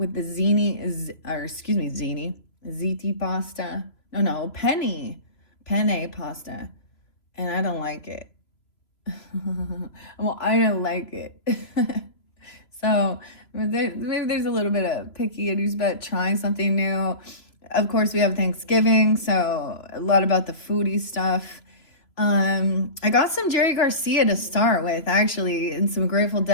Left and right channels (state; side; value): late; right; 3.0 ms